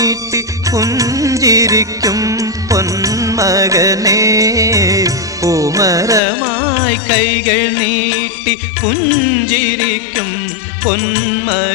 പുഞ്ചിരിക്കും പൊന്മകനെ പൂമരമായി കൈകൾ നീട്ടി പുഞ്ചിരിക്കും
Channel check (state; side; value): drops out; right; at 6.2 s